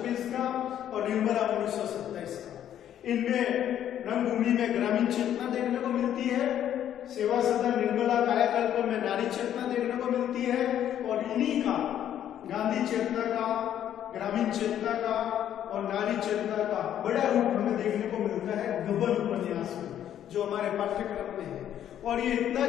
का और निर्मला 1927 का। इनमें रंगभूमि में ग्रामीण चेतना देखने को मिलती है, सेवा सदन निर्मला कायाकल्प में नारी चेतना देखने को मिलती है, और इन्हीं का गांधी चेतना का, ग्रामीण चेतना का और नारी चेतना का बड़ा रूप हमें देखने को मिलता है गबन उपन्यास में, जो हमारे पाठ्यक्रम में है। और ये इतना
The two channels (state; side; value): quieter; right; 10.6 dB